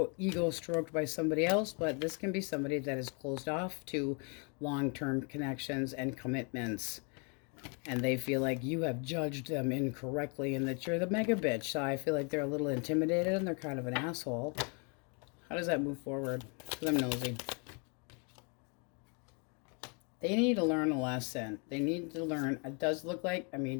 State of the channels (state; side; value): quieter; right; 35.8 dB